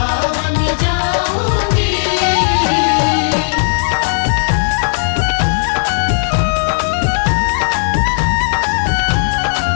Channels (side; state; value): right; silent; 70 dB below the other